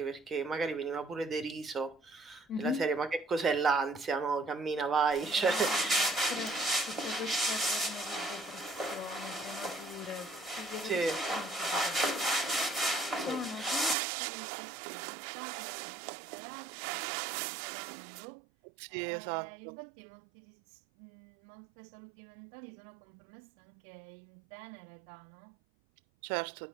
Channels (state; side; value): drops out; left; at 14.0 s